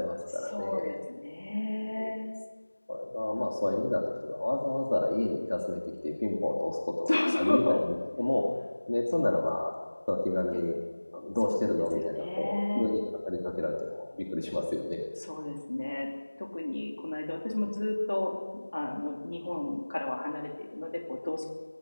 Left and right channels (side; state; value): both; inverted; correlation -1.00